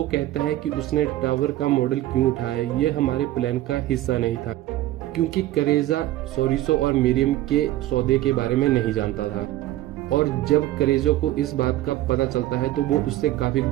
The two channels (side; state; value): left; quieter; 15.1 dB